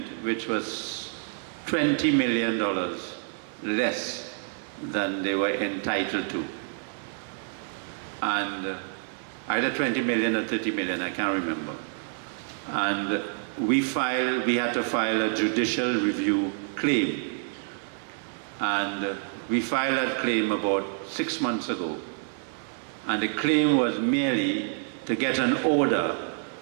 which was $20 million less than they were entitled to. And either 20 million or 30 million, I can't remember. And we had to file a judicial review claim. And we filed that claim about 6 months ago. And the claim was merely to get an order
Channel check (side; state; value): left; silent; digital silence